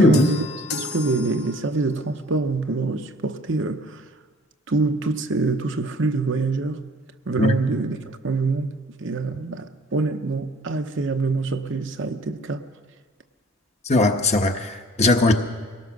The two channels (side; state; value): both; normal; correlation 0.53